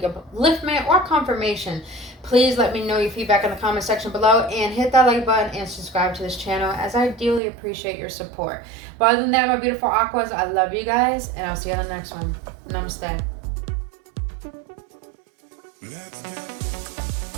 or confirmation, please let me know your feedback in the comment section below, and hit that like button and subscribe to this channel, as I dearly appreciate your support. But other than that, my beautiful Aquas, I love you guys, and I'll see you on the next one. Namaste.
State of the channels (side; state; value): left; drops out; at 7.4 s